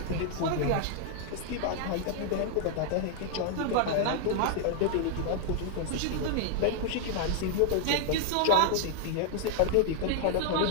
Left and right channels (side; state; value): both; different; correlation 0.00